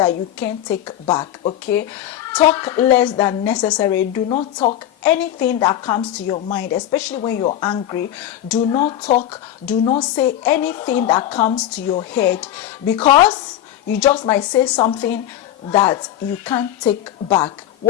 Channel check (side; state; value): right; quieter; 11.8 dB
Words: you can't take back, okay? Talk less than necessary. Do not talk anything that comes to your mind, especially when you're angry. Do not talk, do not say anything that comes to your head, because you just might say something that you can't take back.